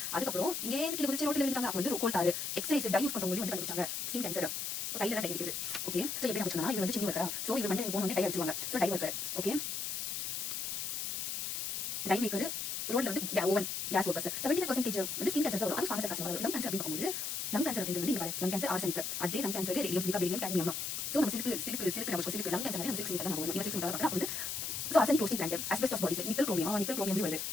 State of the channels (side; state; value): left; noise; hiss, 3 dB below the sound